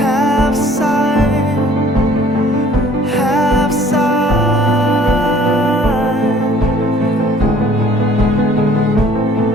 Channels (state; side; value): normal; both; correlation 0.55